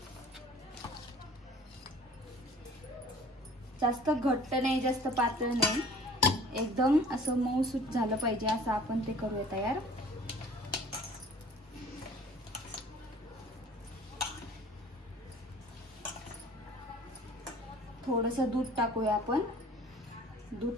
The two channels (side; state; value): both; normal; correlation 0.48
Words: जास्त घट्ट नाही, जास्त पातळ नाही, एकदम असं मऊसूत झालं पाहिजे असं आपण ते करूया तयार। थोडंसं दूध टाकूया आपण। दूध